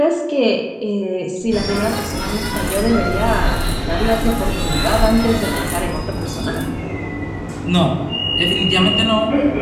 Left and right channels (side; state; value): both; identical; correlation 1.00